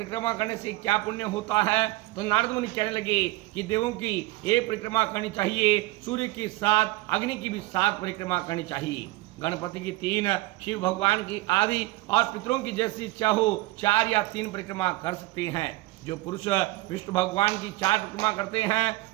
करने से क्या पुण्य होता है। तो नारद मुनि कहने लगे कि देवों की एक परिक्रमा करनी चाहिए, सूर्य की 7, अग्नि की भी 7 परिक्रमा करनी चाहिए, गणपति की 3, शिव भगवान की आदि और पितरों की जैसी इच्छा हो 4 या 3 परिक्रमा कर सकते हैं। जो पुरुष विष्णु भगवान की 4 परिक्रमा करते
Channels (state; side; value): quieter; left; 20.0 dB